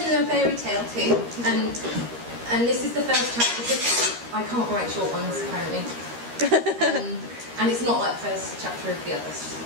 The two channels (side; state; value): left; late; 13 ms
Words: a fairy tale too, and this is the first chapter because I can't write short ones apparently. And it's not like the first chapter of the other